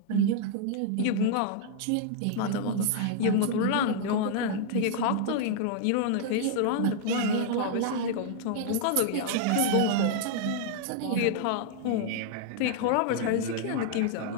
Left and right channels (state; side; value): different; both; correlation -0.01